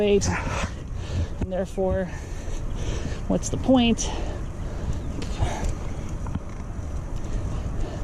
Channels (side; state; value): both; identical; correlation 1.00